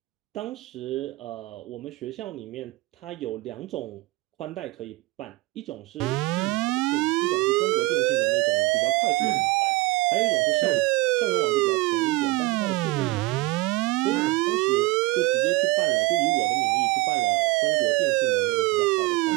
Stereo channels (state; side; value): quieter; left; 21.4 dB